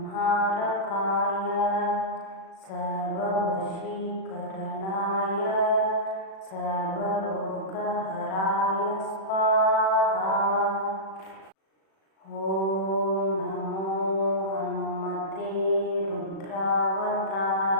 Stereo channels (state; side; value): late; right; 36 ms